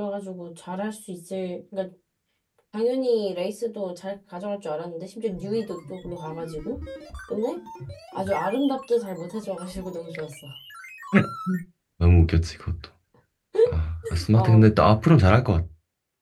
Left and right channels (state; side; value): identical; both; correlation 1.00